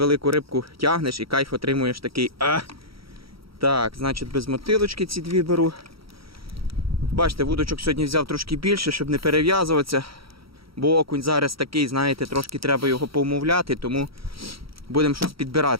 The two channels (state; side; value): late; left; 0.75 ms